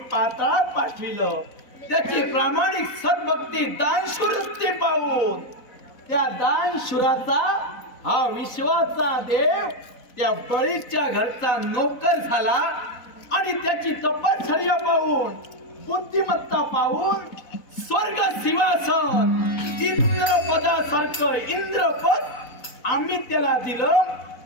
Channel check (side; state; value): right; late; 4.0 ms